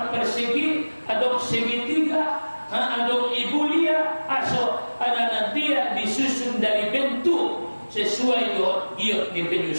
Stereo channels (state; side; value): inverted; both; correlation -1.00